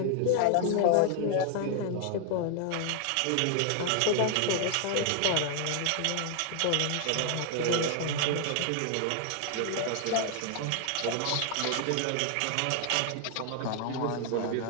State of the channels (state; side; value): different; both; correlation 0.00